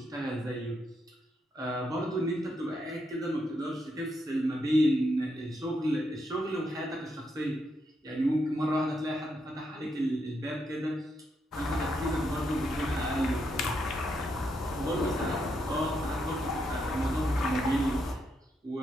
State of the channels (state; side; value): normal; both; correlation 0.80